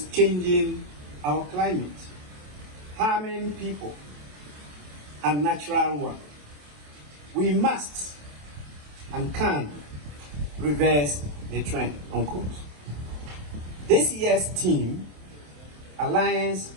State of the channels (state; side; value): late; left; 27 ms